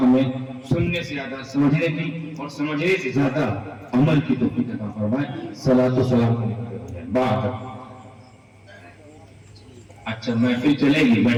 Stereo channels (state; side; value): identical; both; correlation 1.00